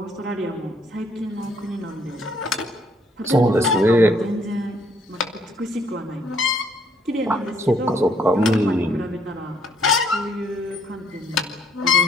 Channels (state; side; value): normal; both; correlation 0.66